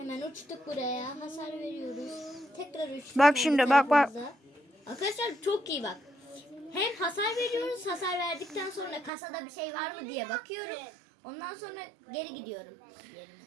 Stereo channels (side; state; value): left; drops out; at 9.1 s